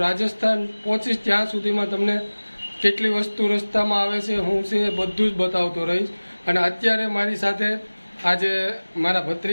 રાજસ્થાન પહોંચીશ ત્યાં સુધીમાં તમને કેટલી વસ્તુ રસ્તામાં આવે છે, હું છે બધું જ બતાવતો રહીશ. અને અત્યારે મારી સાથે આજે મારા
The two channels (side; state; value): both; inverted; correlation -1.00